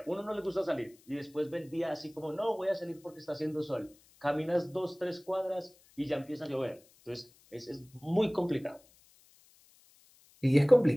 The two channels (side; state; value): left; noise; hiss, 29 dB below the sound